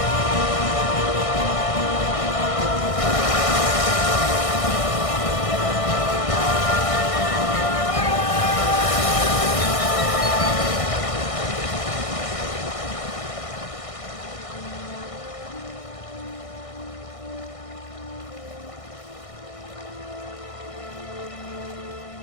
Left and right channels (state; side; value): late; right; 1.6 ms